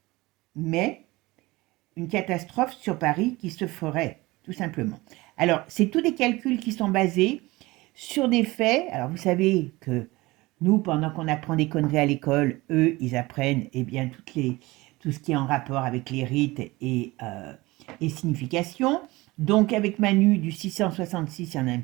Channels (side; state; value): left; quieter; 21.1 dB